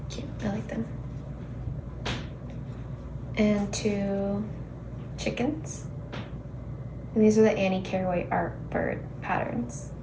Cute, I like them. And 2 chickens. And these are the Annie Carraway art bird patterns.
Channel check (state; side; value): identical; both; correlation 1.00